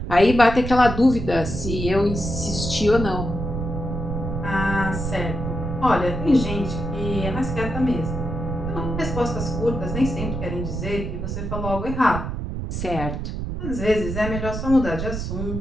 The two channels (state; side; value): noise; right; rumble, 4 dB below the sound